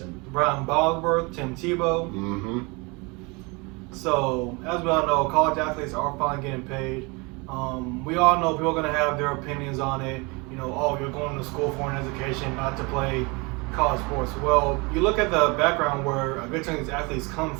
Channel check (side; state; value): left; quieter; 27.8 dB